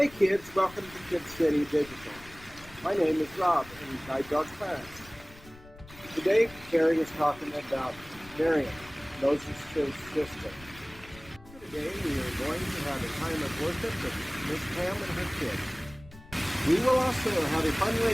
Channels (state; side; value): noise; left; rumble, 21 dB below the sound